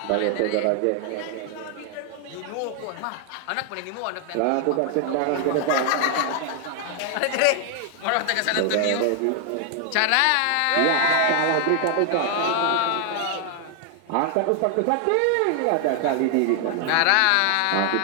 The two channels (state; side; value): different; both; correlation 0.00